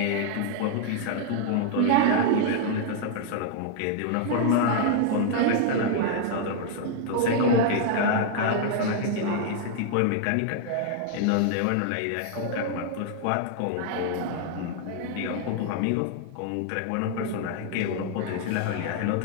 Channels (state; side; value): different; both; correlation 0.00